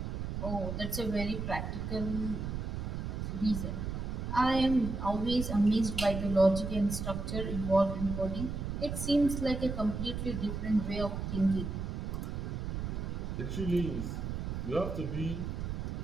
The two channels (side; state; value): right; noise; rumble, 4 dB below the sound